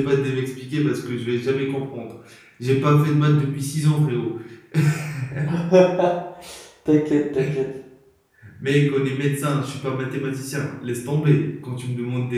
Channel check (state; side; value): identical; both; correlation 1.00